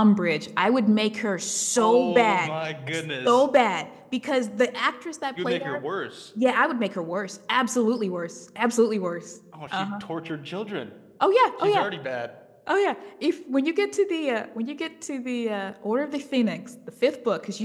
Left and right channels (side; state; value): both; identical; correlation 1.00